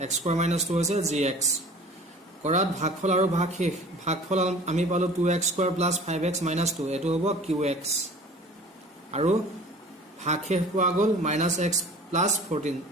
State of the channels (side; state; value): both; normal; correlation 0.44